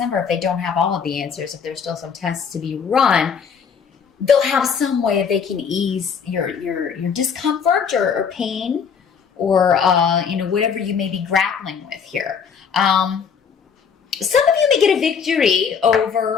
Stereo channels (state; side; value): quieter; right; 6.6 dB